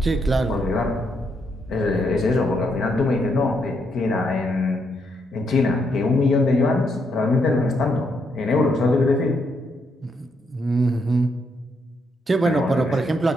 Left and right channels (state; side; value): normal; both; correlation 0.77